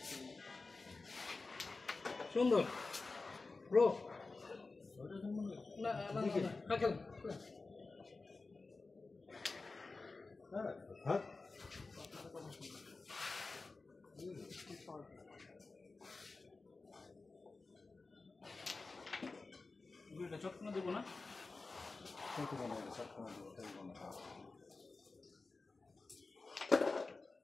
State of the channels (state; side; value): quieter; right; 3.8 dB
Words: সুন্দর ব্রো না না না খেল হ্যাঁ দুইটা চটকনা দেবো না